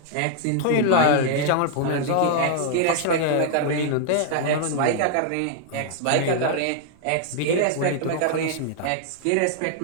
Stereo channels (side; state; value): both; different; correlation 0.00